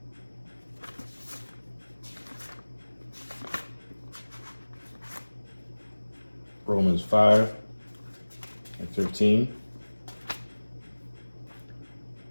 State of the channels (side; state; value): both; inverted; correlation -1.00